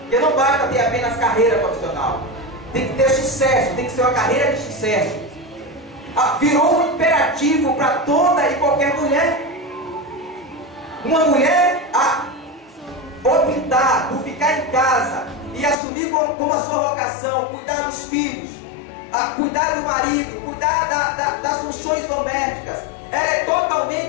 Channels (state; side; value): drops out; right; at 15.8 s